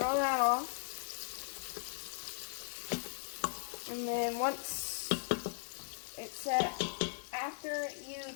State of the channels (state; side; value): silent; right; digital silence